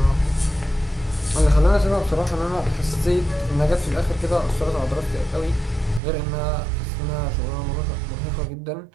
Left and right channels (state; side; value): drops out; left; at 6.0 s